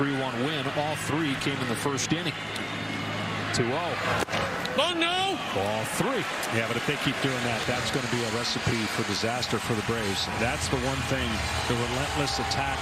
win, all 3 came in the first inning. 2-0. Oh, no! Ball 3. Yeah, but if they keep doing that, that's going to be a recipe for disaster for the Braves. That's the one thing, the relentless attack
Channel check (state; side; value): identical; both; correlation 1.00